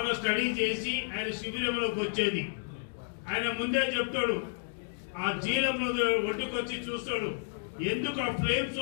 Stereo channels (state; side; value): silent; right; digital silence